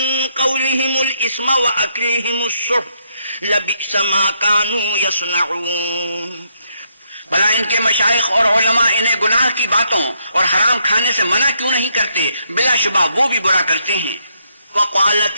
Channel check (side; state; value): both; inverted; correlation -0.75